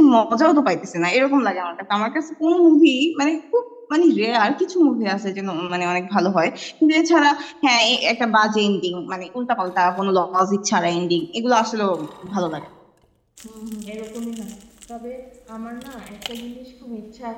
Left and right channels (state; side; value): identical; both; correlation 1.00